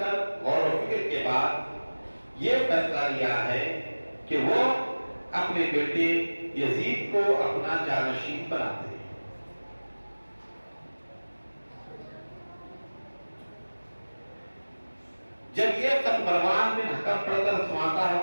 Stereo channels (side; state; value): both; inverted; correlation -1.00